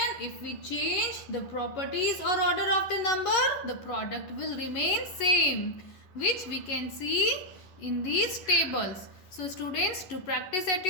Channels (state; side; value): late; right; 11 ms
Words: If we change the properties or order of the number, the product will remain same, which we can see in these tables. So students, to practice at